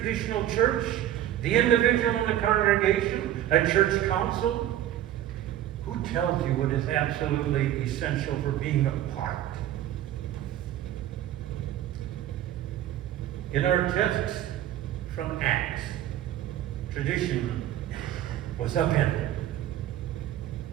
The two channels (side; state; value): left; quieter; 12.3 dB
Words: church? The individual in the congregation? A church council? Who tells you what is absolutely essential for being a part? In our text from Acts, tradition was upended.